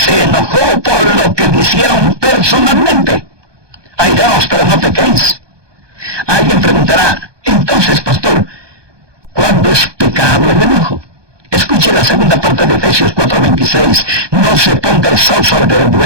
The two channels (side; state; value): left; late; 1.2 ms